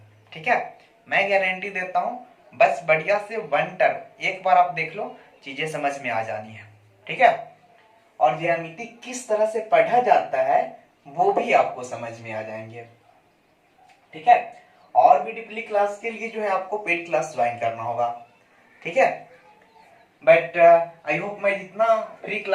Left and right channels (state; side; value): identical; both; correlation 1.00